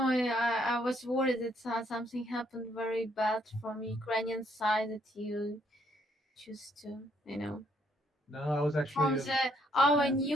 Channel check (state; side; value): normal; both; correlation 0.70